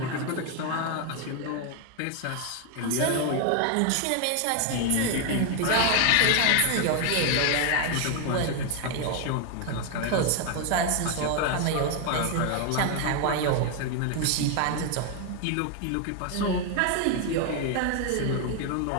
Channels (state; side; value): different; both; correlation 0.01